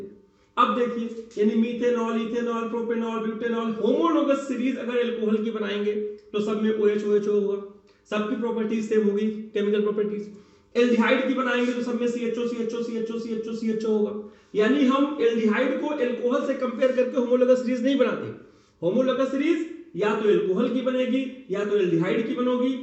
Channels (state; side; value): identical; both; correlation 1.00